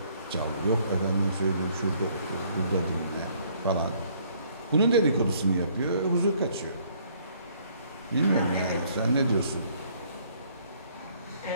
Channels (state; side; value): inverted; both; correlation -0.63